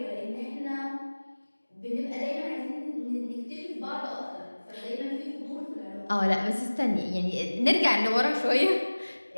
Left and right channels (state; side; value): inverted; both; correlation -1.00